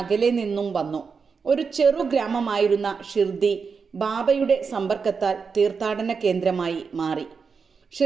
അകലെ നിന്നും വന്നു. ഒരു ചെറു ഗ്രാമമായിരുന്ന ഷിർദി ബാബയുടെ സമ്പർക്കത്താൽ തീർത്ഥാടന കേന്ദ്രമായി മാറി.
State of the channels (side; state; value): left; quieter; 5.4 dB